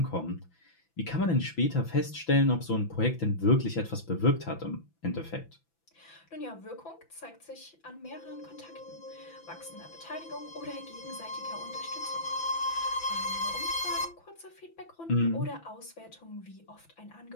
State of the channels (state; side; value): late; right; 6.0 ms